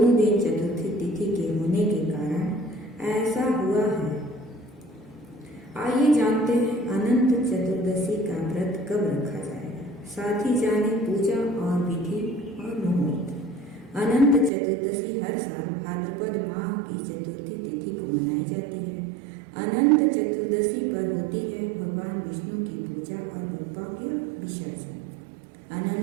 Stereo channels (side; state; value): left; drops out; at 14.5 s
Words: दिन चतुर्थी तिथि के होने के कारण ऐसा हुआ है। आइए जानते हैं अनंत चतुर्दशी का व्रत कब रखा जाएगा। साथ ही जाने पूजा और विधि और मुहूर्त। अनंत चतुर्दशी हर साल भाद्रपद माह की चतुर्थी तिथि को मनाई जाती है। अनंत चतुर्दशी पर होती है भगवान विष्णु की पूजा और बप्पा के विसर्जन।